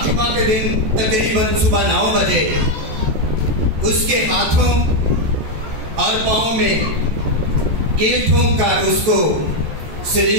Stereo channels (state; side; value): late; left; 14 ms